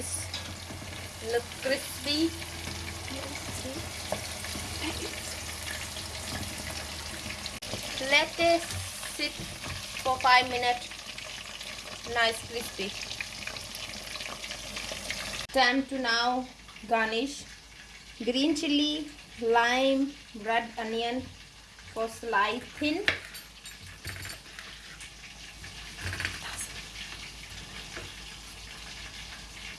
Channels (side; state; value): both; identical; correlation 1.00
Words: look crispy. Let it sit for 5 minutes. Nice crispy. Time to now garnish. Green chili, lime, red onion for slice thin.